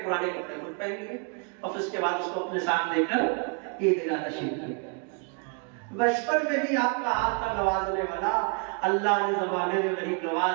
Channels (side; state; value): left; quieter; 38.5 dB